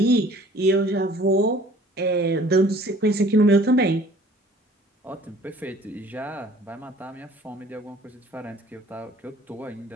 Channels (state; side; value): normal; both; correlation 0.52